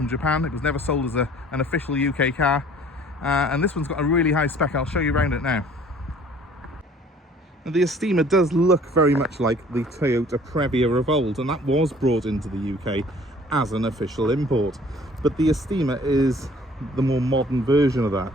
Japan. It was never sold as an official UK car, and this one's got a really high spec. I'll show you around it now. Now, the Estima does look very much like the Toyota Previa of old, and that was brought into the UK as an official import, but the Estima is the more modern version of that,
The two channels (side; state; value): both; normal; correlation 0.53